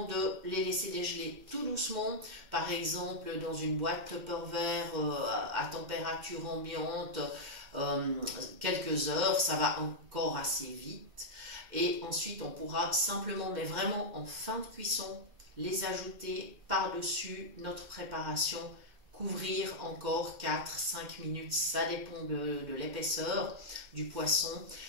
de les laisser dégeler tout doucement. Par exemple, dans une boîte Tupperware à température ambiante, quelques heures, ça va encore assez vite. Et ensuite, on pourra simplement, mais vraiment en fin de cuisson, les ajouter par-dessus notre préparation. Couvrir encore 4-5 minutes, ça dépend de l'épaisseur du poisson,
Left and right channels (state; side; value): late; left; 2.1 ms